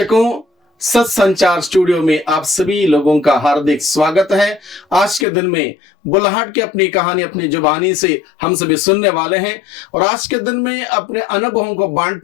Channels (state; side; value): drops out; right; at 5.2 s